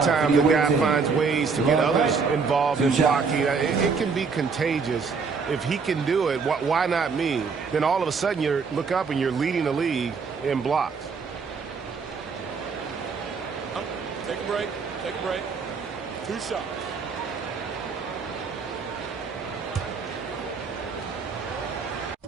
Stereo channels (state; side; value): quieter; left; 5.2 dB